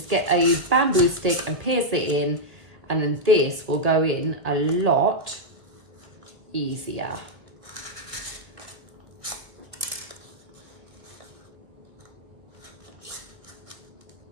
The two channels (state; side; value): late; left; 1.5 ms